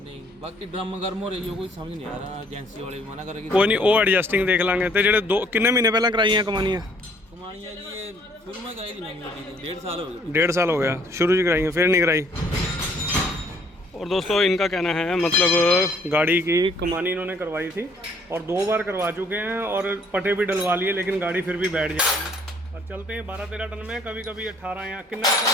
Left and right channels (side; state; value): both; normal; correlation 0.62